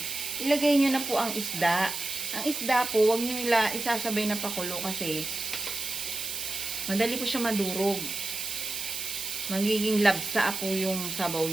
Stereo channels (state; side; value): noise; right; hiss, 5 dB below the sound